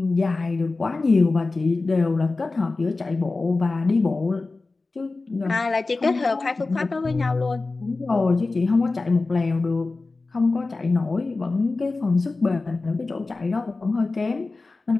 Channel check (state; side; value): quieter; right; 3.6 dB